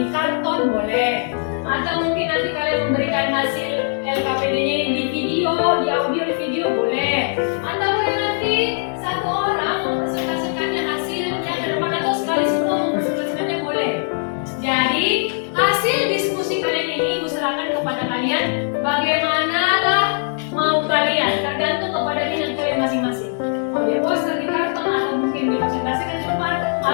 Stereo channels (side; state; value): right; silent; digital silence